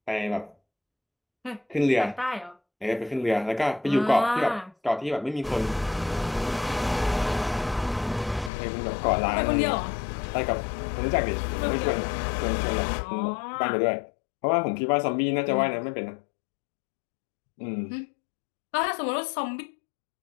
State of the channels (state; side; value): drops out; right; at 8.5 s